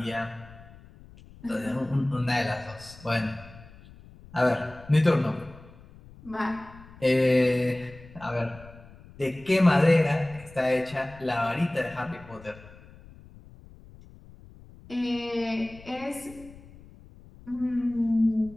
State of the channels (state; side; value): noise; left; rumble, 21 dB below the sound